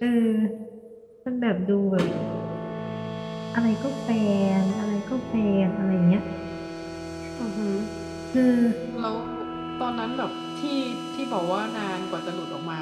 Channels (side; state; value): both; identical; correlation 1.00